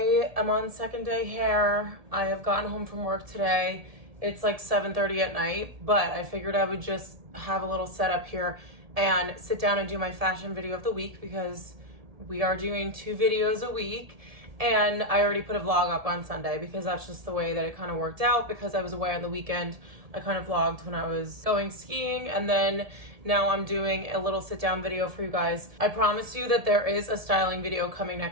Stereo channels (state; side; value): late; left; 1.7 ms